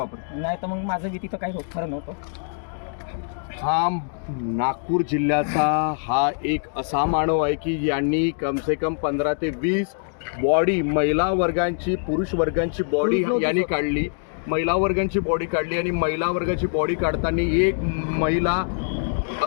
नाही तर मग माझं भीती तर काही होत खरं नव्हतं. हा नागपूर जिल्ह्याचा हा एक असा मानव आहे की यांनी कम से कम 15 ते 20 बॉडी महिला वर्गांची, पुरुष वर्गांची बॉडी यांनी काढली. महिला वर्गांची बॉडी काढली आणि महिला वर्गाची बॉडी काढताना एक महिला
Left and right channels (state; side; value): silent; right; digital silence